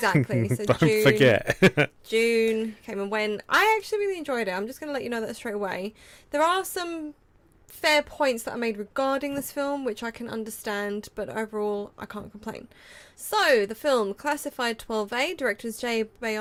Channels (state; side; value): identical; both; correlation 1.00